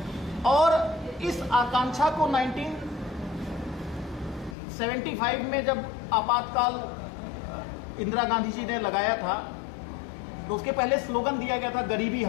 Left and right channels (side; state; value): right; drops out; at 4.5 s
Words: और इस आकांक्षा को 1975 में जब आपातकाल इंदिरा गांधी जी ने लगाया था तो उसके पहले स्लोगन दिया गया था गरीबी